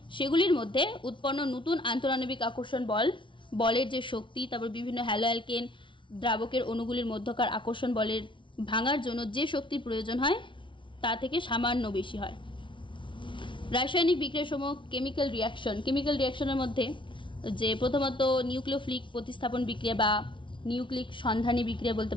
সেগুলির মধ্যে উৎপন্ন নতুন আন্তঃআণবিক আকর্ষণ বলের যে শক্তি, তারপর বিভিন্ন হ্যালো অ্যালকেন দ্রাবকের অণুগুলির মধ্যকার আকর্ষণ বলের ভাঙার জন্য যে শক্তির প্রয়োজন হয় তা থেকে সামান্য বেশি হয়। রাসায়নিক বিক্রিয়ার সময় কেমিক্যাল রিয়াকশনের মধ্যে যে প্রথমত নিউক্লিওফিলিক প্রতিস্থাপন বিক্রিয়া বা নিউক্লিক সন্ধানী বিক্রিয়া বলতে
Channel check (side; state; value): right; late; 0.24 ms